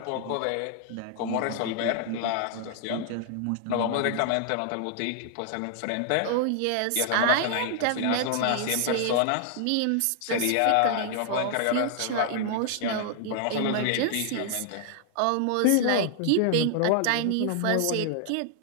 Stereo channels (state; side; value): different; both; correlation 0.00